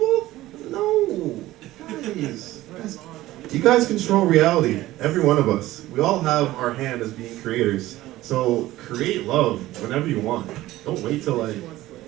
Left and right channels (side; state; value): left; quieter; 16.2 dB